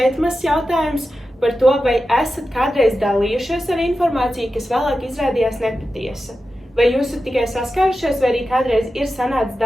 mazs jautājums par to, vai esat kādreiz dalījušies ar informāciju, kas vēlāk izrādījās nepatiesa. Vai jūs esat tikai saskārušies, vai arī kādreiz ir sanācis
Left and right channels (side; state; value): both; normal; correlation 0.92